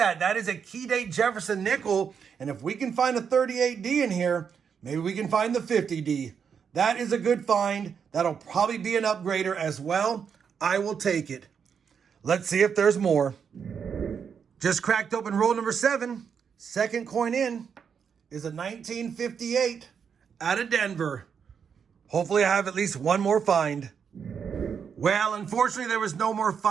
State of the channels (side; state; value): left; quieter; 6.9 dB